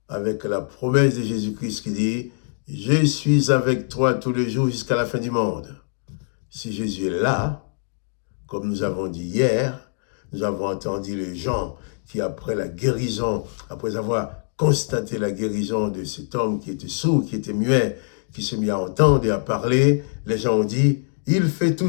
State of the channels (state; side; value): silent; right; digital silence